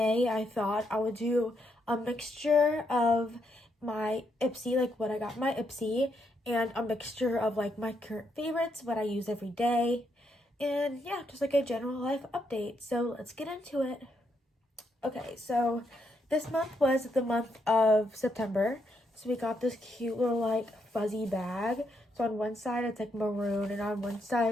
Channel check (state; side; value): normal; both; correlation 0.78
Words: I thought I would do a mixture of my Ipsy, like what I got in my Ipsy, and a mixture of like my current favorites, what I use every day, and yeah, just like a general life update. So let's get into it. Okay, so this month was the month of September. So we got this cute little like fuzzy bag. So on one side it's like maroon and on one